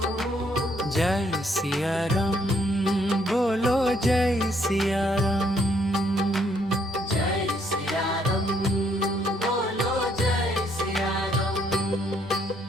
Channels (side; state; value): both; normal; correlation 0.69